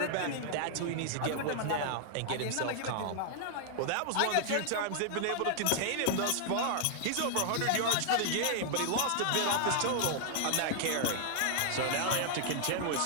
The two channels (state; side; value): different; both; correlation -0.01